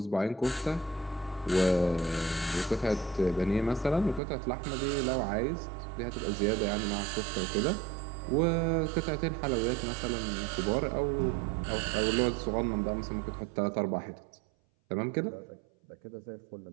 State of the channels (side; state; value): left; drops out; at 4.2 s